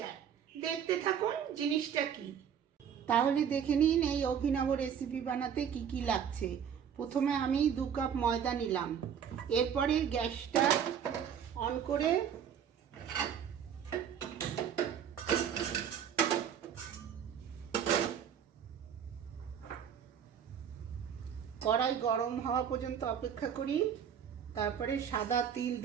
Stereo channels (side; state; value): left; quieter; 8.3 dB